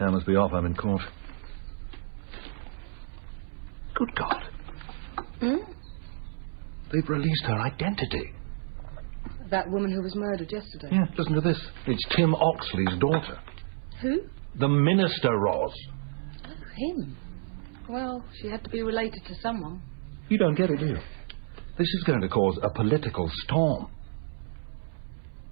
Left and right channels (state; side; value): silent; left; 58 dB below the other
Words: must be off. I'm in court. Good God. Hmm? They've released her identity. That woman who was murdered yesterday. Yeah, listen to this. It's Tim Oxley's daughter. Who? The minister, Ros. Oh, him. Well, she had to be related to someone. You don't get it, do you? This is going to cause a political storm.